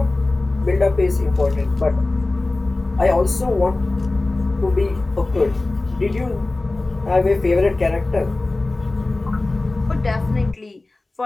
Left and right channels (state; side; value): quieter; right; 3.1 dB